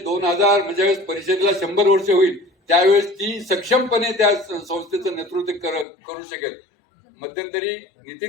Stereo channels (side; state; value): right; drops out; at 5.9 s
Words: म्हणजे परिषदेला 100 वर्ष होईल त्यावेळेस ती सक्षमपणे त्या संस्थेचं नेतृत्व करू शकेल. मध्यंतरी